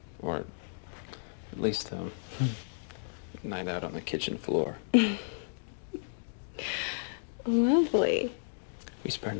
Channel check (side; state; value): right; silent; digital silence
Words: Or at least a night out on the kitchen floor. Lovely. We spare